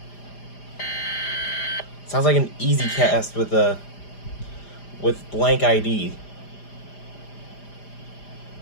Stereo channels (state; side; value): late; right; 5.0 ms